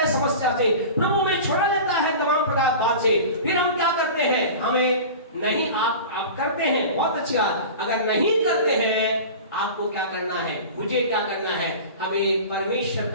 समस्या से, प्रभु हमें छुड़ा लेता है तमाम प्रकार बात से, फिर हम क्या करते हैं? हमें नहीं, आप करते हैं, बहुत अच्छी बात। अगर नहीं करते हैं, आपको क्या करना है? मुझे क्या करना है? हमें परमेश्वर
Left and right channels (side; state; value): both; inverted; correlation -0.35